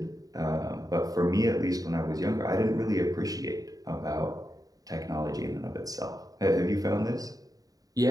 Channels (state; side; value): late; left; 0.18 ms